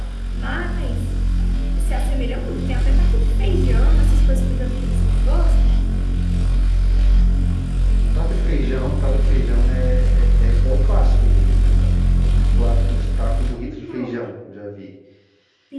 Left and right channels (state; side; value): identical; both; correlation 1.00